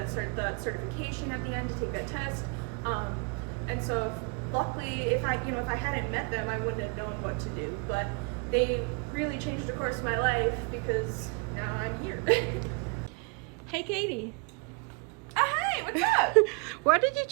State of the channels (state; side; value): quieter; left; 34.4 dB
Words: certification at the end to take that test. And so luckily, if I hadn't met them, I wouldn't have known what to do. But they really changed the course of my life because now I'm here. Hey Katie. Hey, what's up? Why did you